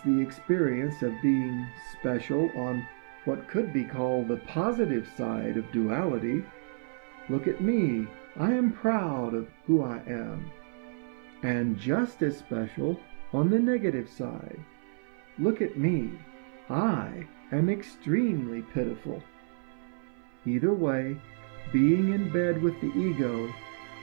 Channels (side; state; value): left; silent; 55 dB below the other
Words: the experience of being special on what could be called the positive side of duality. Look at me, I am proud of who I am. And just as special on the negative side. Look at me, I am extremely pitiful. Either way, being in bed with the ego,